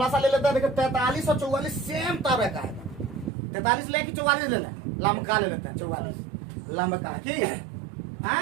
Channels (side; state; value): left; drops out; at 3.3 s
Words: सा ले लेता है। देखो 43 और 44 सेम तरह का है। 43 ले कि 44 ले लें? लमका ले लेते हैं। 44 लमका ठीक है।